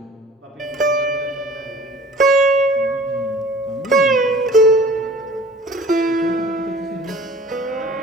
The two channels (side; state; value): both; normal; correlation 0.46